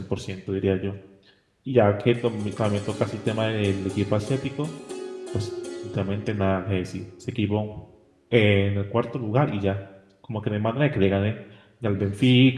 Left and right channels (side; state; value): both; identical; correlation 1.00